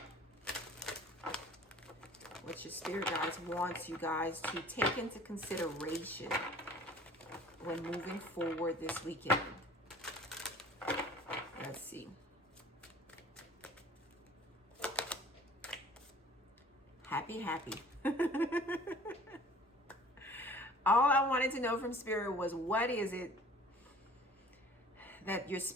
What your Spirit guides wants you guys to take into consideration when moving forward this weekend. Let's see. Happy, happy. All I wanted to know from Spirit was, what is it that your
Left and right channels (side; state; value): both; normal; correlation 0.49